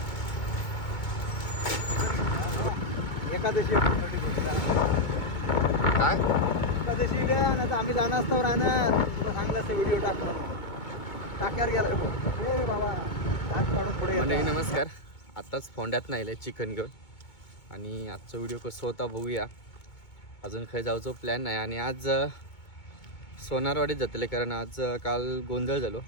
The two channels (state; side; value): late; right; 2.2 ms